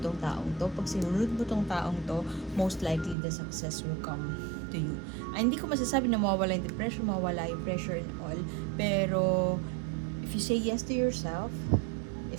taong to. Pag sinunod mo tong taong to, most likely the success will come to you. Hindi ko masasabi na mawawala yung depression, mawawala yung pressure and all, pero if you say yes to yourself, if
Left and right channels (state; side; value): drops out; left; at 3.2 s